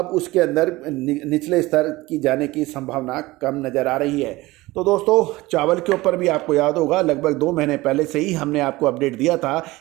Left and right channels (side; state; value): left; quieter; 19.8 dB